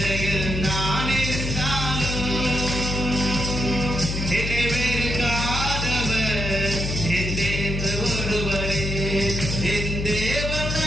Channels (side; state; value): left; noise; hum, 3 dB below the sound